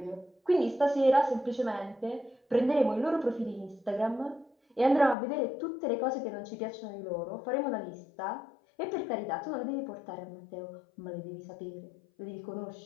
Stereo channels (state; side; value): drops out; right; at 5.2 s